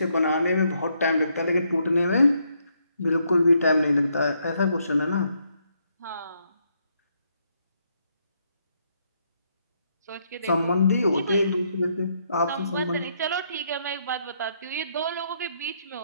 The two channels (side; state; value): both; inverted; correlation -0.75